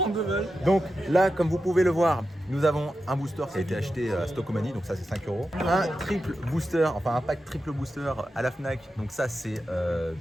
balles. Donc là, comme vous pouvez le voir, nous avons un booster qui a été acheté à Stockomanie, donc ça c'est 5 €. Un triple booster, enfin un pack triple booster à la Fnac, donc ça c'est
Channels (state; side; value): normal; both; correlation 0.90